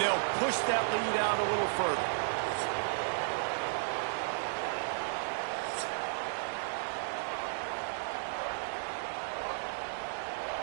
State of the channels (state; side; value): silent; left; digital silence